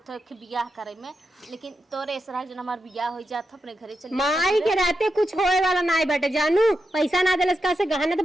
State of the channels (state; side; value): normal; both; correlation 0.87